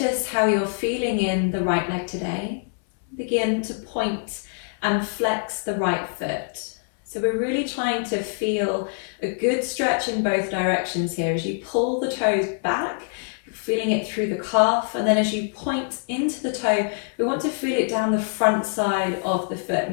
how you're feeling in the right leg today. Begin to point and flex the right foot. So we're really trying to feel a good stretch in both directions here. As you pull the toes back, you're feeling it through the calf, and then as you point into the toe, we want to feel it down the front side of the foot,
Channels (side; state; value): right; silent; digital silence